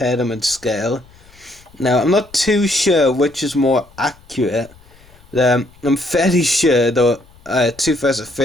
them in scale. Now, I'm not too sure which is more accurate. I'm fairly sure the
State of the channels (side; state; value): left; noise; rumble, 27 dB below the sound